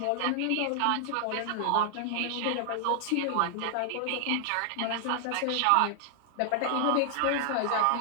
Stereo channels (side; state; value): both; different; correlation -0.01